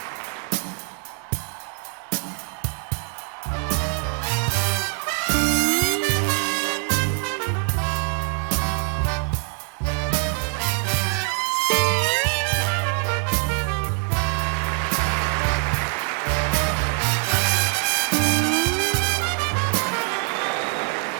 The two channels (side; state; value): left; quieter; 32.2 dB